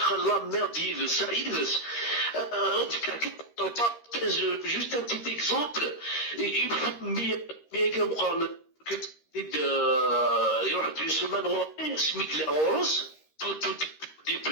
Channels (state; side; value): late; right; 13 ms